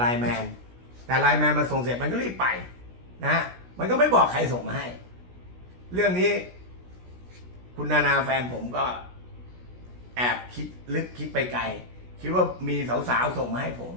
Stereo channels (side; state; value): left; late; 16 ms